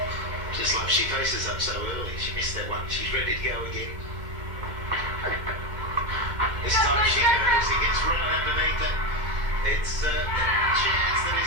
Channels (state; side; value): late; left; 2.1 ms